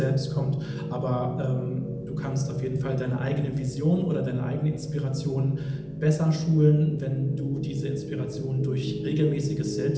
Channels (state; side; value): identical; both; correlation 1.00